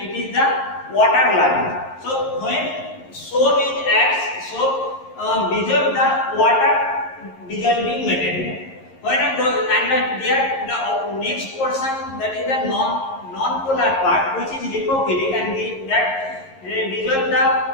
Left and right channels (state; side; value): late; right; 11 ms